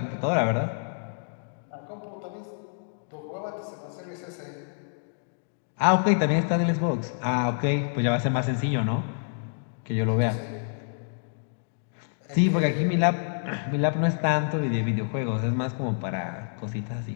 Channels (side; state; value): right; silent; digital silence